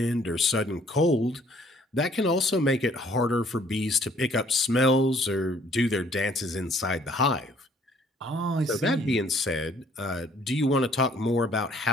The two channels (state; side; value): normal; both; correlation 0.60